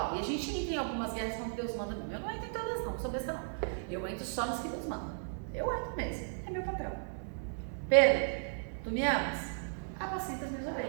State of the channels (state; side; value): silent; left; 54 dB below the other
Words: E a gente entra em algumas guerras quando Deus manda. Eu não entro em todas não sou besta não. Eu entro só nos que Deus manda. Eu entro mesmo, é meu papel. Pedro, tu me amas? Apacenta as minhas